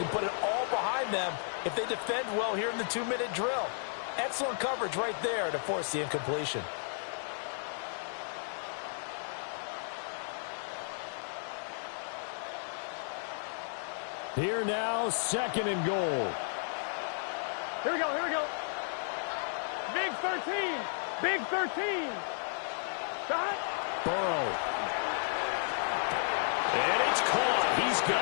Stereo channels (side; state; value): right; silent; digital silence